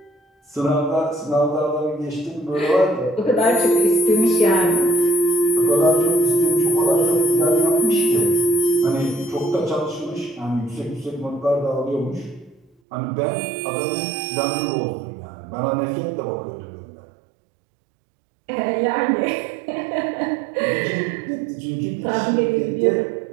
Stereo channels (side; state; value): left; drops out; at 12.7 s